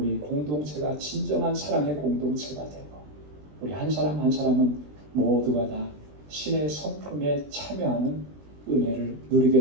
공동체가 진정한 사랑의 공동체가 되고 우리 한 사람 한 사람은 모두가 다 신의 성품에 참여하는 은혜를 누리게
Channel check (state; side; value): late; left; 20 ms